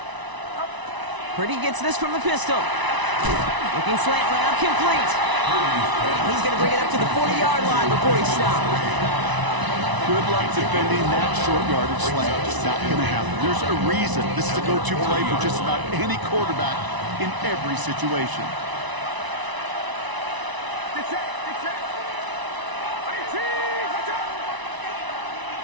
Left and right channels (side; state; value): left; late; 1.0 ms